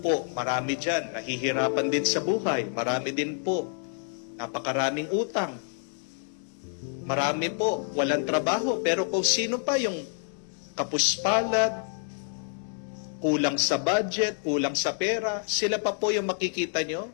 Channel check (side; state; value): right; silent; 59 dB below the other